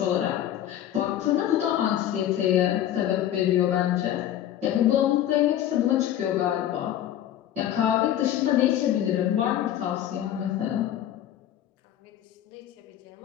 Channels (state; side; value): quieter; right; 11.6 dB